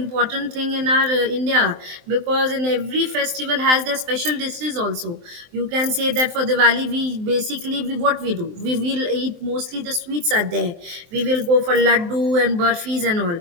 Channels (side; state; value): left; late; 23 ms